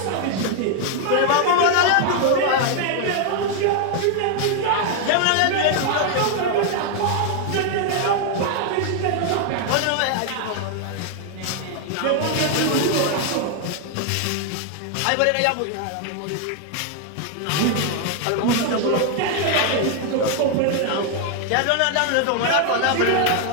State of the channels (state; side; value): different; both; correlation 0.00